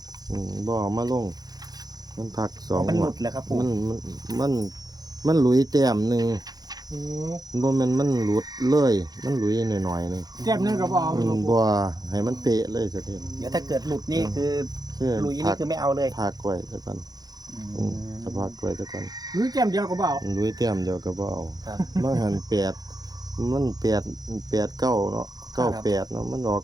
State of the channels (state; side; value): late; left; 0.19 ms